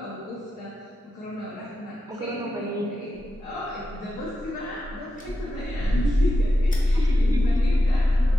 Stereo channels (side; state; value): both; normal; correlation 0.89